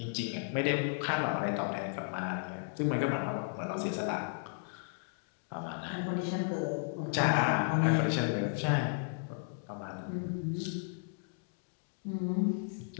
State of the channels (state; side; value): silent; right; digital silence